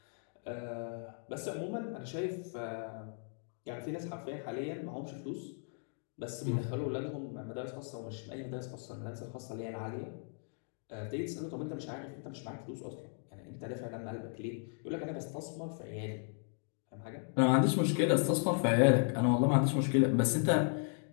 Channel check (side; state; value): right; silent; 54 dB below the other